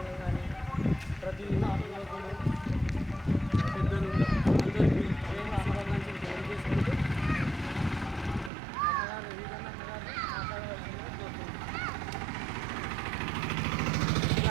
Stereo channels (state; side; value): drops out; left; at 8.5 s